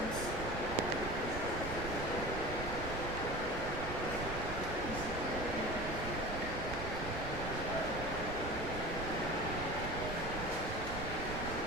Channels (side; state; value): right; noise; rumble, 6 dB below the sound